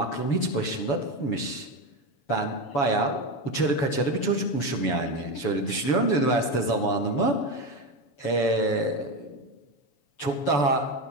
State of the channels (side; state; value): right; late; 7.1 ms